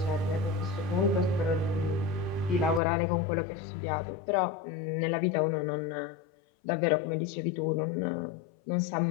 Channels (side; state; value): right; drops out; at 2.8 s